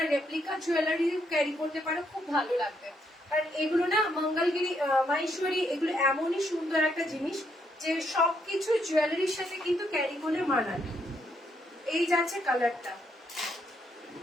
রেপ্লিকা জুয়েলারি ক্যারি করতে পারো, খুব ভালো লাগবে। কারণ এগুলো না মঙ্গলগিরি মাহেশ্বরী, এগুলো এমনই সুন্দর একটা জিনিস যে সবকিছু জুয়েলারির সাথে কিন্তু ক্যারি করলে মানায়। এই যাচ্ছে কালারটা,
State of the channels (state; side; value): normal; both; correlation 0.75